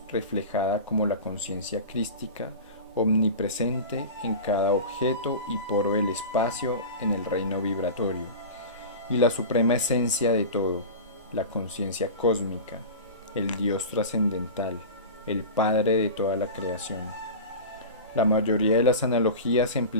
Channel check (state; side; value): inverted; both; correlation -0.30